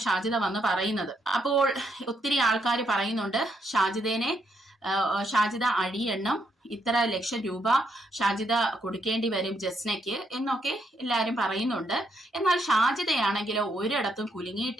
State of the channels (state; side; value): normal; both; correlation 0.76